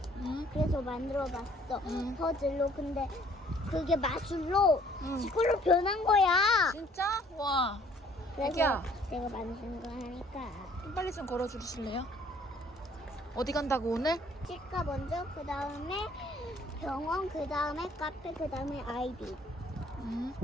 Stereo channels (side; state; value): both; normal; correlation 0.59